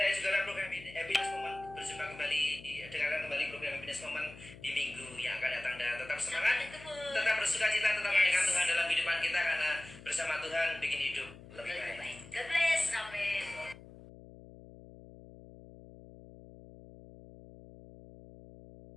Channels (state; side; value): noise; left; hum, 18 dB below the sound